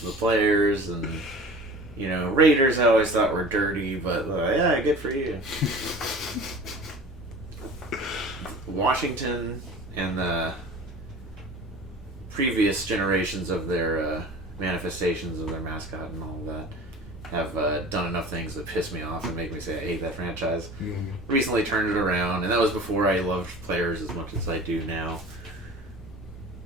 the players, and, Raiders I always thought were dirty, but, yeah, good for you. Washington and the previous generations of their manifestations of their mascot and all of that have done enough things that piss me off and make me say I hate that franchise. Mm-hmm. Recently turned it around, and that was before I loved players as much as I do now.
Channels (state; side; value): normal; both; correlation 0.40